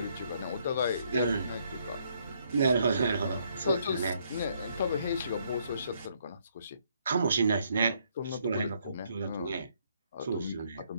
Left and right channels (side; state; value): both; inverted; correlation -0.70